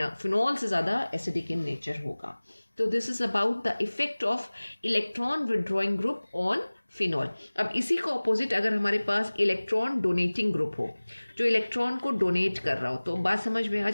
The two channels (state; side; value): inverted; both; correlation -1.00